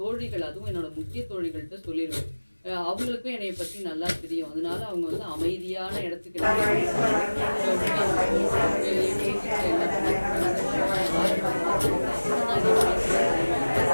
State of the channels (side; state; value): both; inverted; correlation -1.00